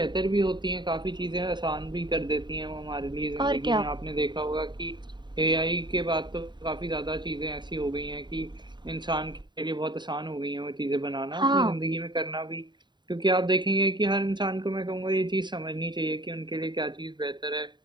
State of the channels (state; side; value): late; left; 0.22 ms